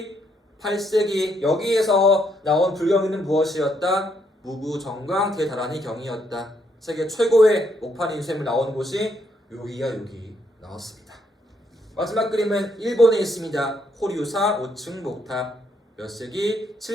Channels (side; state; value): both; normal; correlation 0.74